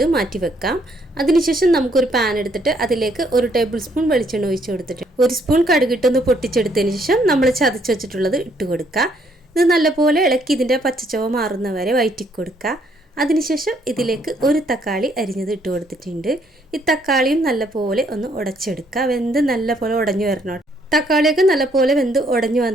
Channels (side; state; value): both; normal; correlation 0.69